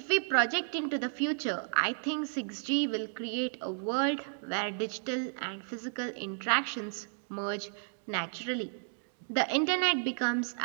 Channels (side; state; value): left; silent; digital silence